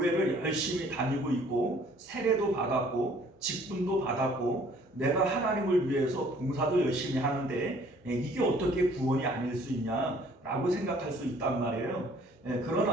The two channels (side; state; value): both; normal; correlation 0.57